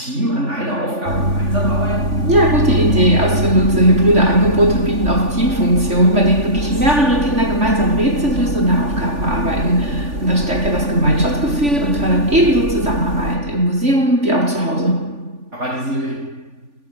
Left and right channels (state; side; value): late; left; 3.4 ms